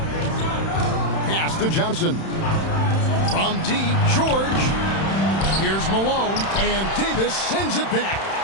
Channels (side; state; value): right; late; 31 ms